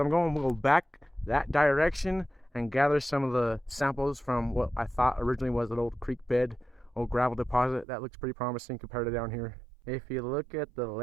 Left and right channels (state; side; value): drops out; left; at 7.9 s